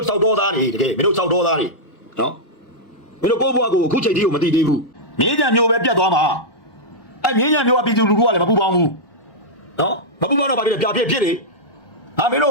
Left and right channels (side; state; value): right; late; 1.1 ms